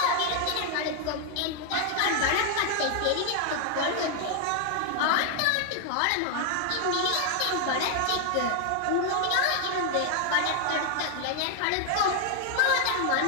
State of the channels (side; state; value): both; different; correlation 0.00